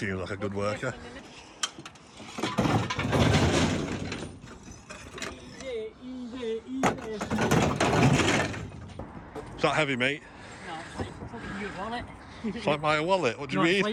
like a good worker. Is that heavy, mate? No, it's like fucking your wallet. It's like my wallet. What do you mean? It's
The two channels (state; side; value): identical; both; correlation 1.00